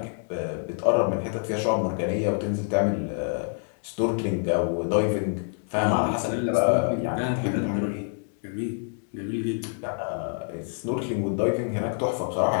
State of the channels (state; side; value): silent; right; 56 dB below the other